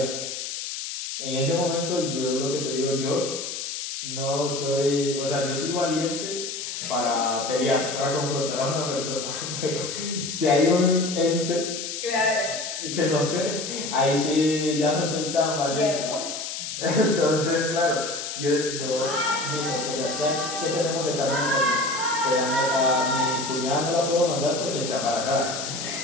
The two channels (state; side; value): noise; left; hiss, 6 dB below the sound